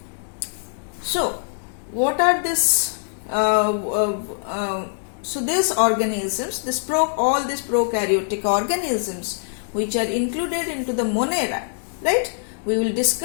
So, what are this? So these organisms, all these prokaryotic organisms which are included into the Monera, right? We will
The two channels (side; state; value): right; silent; digital silence